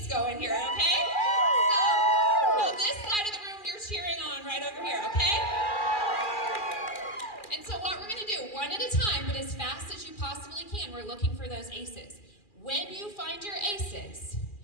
going here, okay? So this side of the room you're cheering on right over here, okay? And so what we're gonna do, one at a time, but as fast as you possibly can, we're looking for those aces. When you find your aces,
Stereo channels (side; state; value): right; late; 2.4 ms